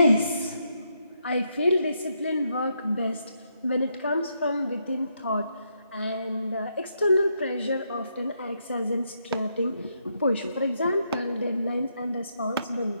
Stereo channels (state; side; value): inverted; both; correlation -0.79